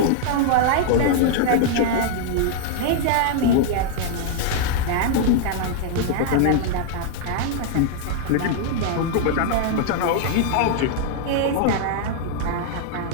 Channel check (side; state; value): both; different; correlation 0.00